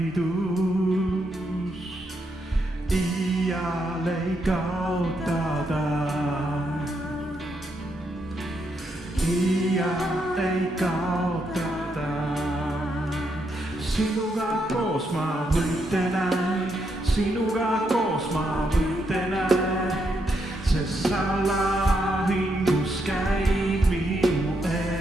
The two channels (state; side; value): normal; both; correlation 0.79